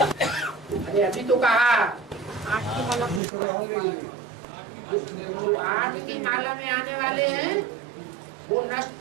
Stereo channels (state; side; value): drops out; left; at 3.2 s